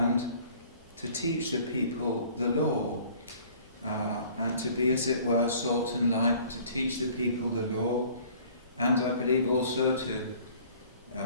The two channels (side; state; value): both; inverted; correlation -0.52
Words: to teach the people the law, and to be, as it were, salt and light, to teach the people the law, and I believe also to